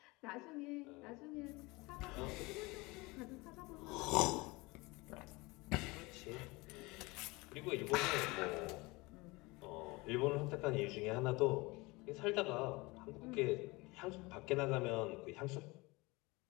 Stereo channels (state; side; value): quieter; right; 23.8 dB